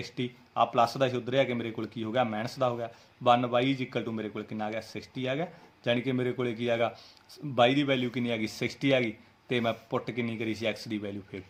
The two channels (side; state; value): both; identical; correlation 1.00